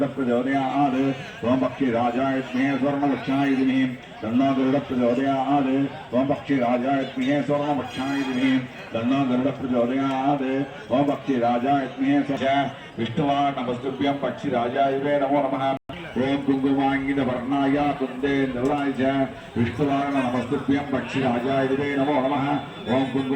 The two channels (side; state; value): both; identical; correlation 1.00